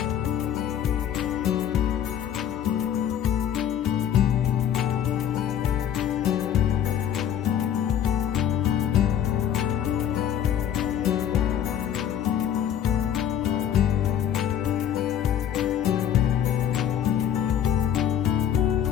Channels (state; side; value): quieter; right; 9.9 dB